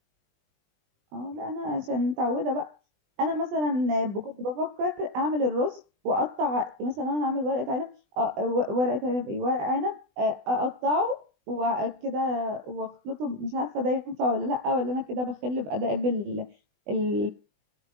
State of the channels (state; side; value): late; left; 20 ms